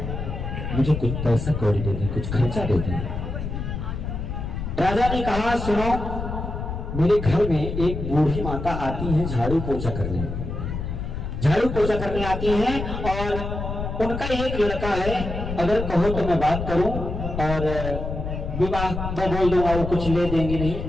मुझे कुछ पैसा कौड़ी दे दें, कुछ खर्चा दे दें। राजा ने कहा, सुनो, मेरे घर में एक बूढ़ी माता आती है झाड़ू पोछा करने, झाड़ू पोछा करने आती हैं और उनका एक लड़का है, अगर कहो तो मैं बात करूं और विवाह मैं बोल दूंगा, वो कुछ ले देंगे नहीं,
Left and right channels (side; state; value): left; noise; rumble, 5 dB below the sound